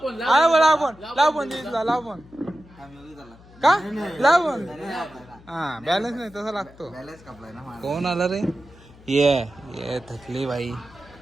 लाव फोन दिवीजला लाव फोन का लाव फोन. हा बॅलन्स नाही तसा लागतो. बॅलन्स कापलाय ना माझा. कोण आला रे ये थकली बाई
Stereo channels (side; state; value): left; noise; hum, 23 dB below the sound